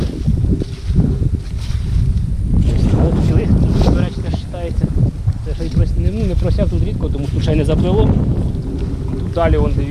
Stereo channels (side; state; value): both; identical; correlation 1.00